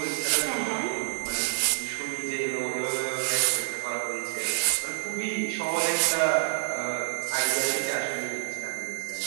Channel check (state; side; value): silent; left; digital silence